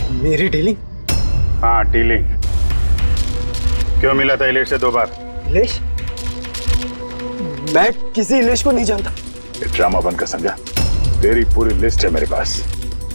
मेरी डीलिंग? हाँ डीलिंग। क्यों मिला था इलेश से 2 बार? इलेश? मैं किसी इलेश को नहीं जानता। ये ड्रामा बंद कर, समझा? तेरी पूरी लिस्ट है मेरे पास।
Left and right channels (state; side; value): inverted; both; correlation -1.00